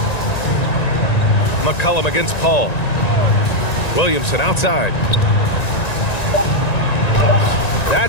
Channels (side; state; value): right; late; 1.9 ms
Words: McCollum against Paul. Williamson outside.